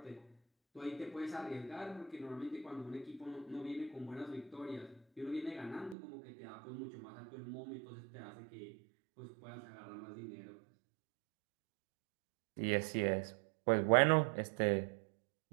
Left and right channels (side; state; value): left; drops out; at 6.0 s